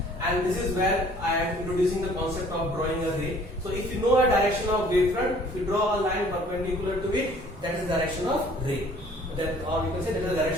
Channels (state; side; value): normal; both; correlation 0.55